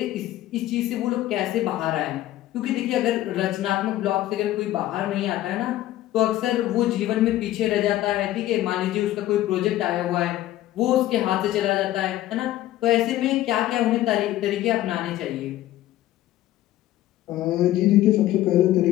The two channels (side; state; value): right; quieter; 14.4 dB